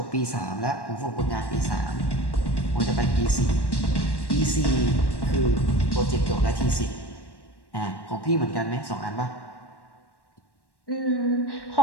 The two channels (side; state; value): right; late; 1.1 ms